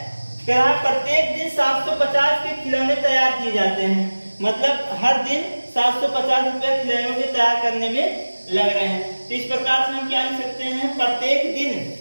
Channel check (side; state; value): both; inverted; correlation -1.00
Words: कह रहा है प्रत्येक दिन 750 के खिलौने तैयार किए जाते हैं। मतलब हर दिन 750 रुपए खिलौनों के तैयार करने में लग रहे हैं। तो इस प्रकार से हम क्या लिख सकते हैं, प्रत्येक दिन